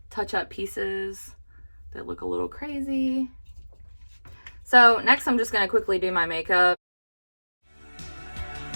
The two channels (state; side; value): inverted; both; correlation -1.00